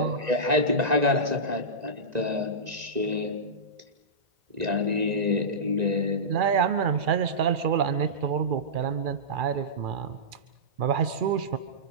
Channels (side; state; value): left; late; 2.4 ms